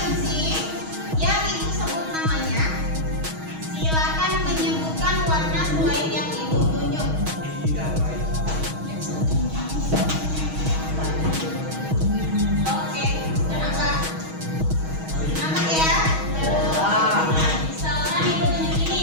yang ibu sebut namanya, silakan menyebutkan warna selain yang ibu tunjuk. Oke, kenapa? Kenapa ya? Misalkan ibu tunjuk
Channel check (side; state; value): left; late; 6.3 ms